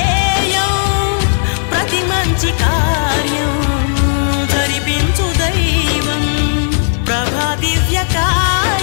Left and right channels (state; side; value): silent; right; digital silence